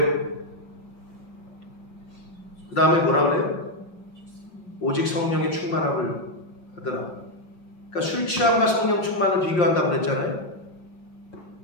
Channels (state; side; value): late; right; 5.6 ms